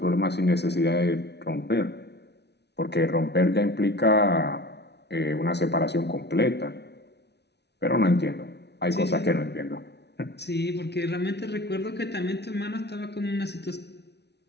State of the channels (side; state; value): right; late; 0.49 ms